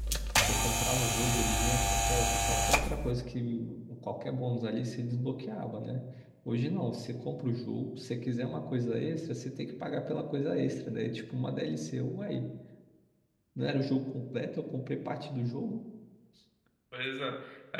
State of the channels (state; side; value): identical; both; correlation 1.00